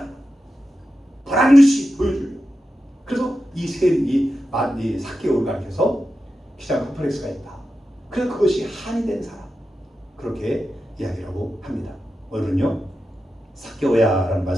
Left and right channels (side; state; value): both; normal; correlation 0.91